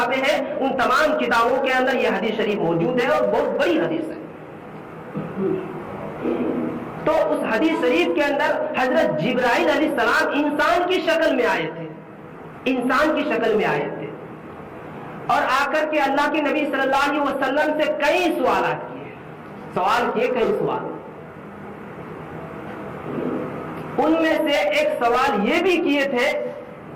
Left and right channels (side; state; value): both; identical; correlation 1.00